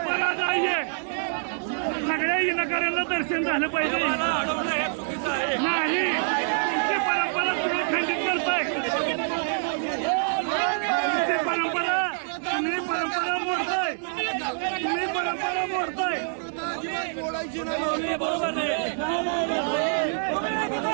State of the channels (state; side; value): silent; left; digital silence